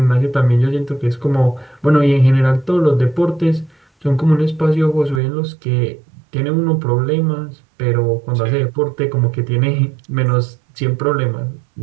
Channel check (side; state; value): left; drops out; at 5.2 s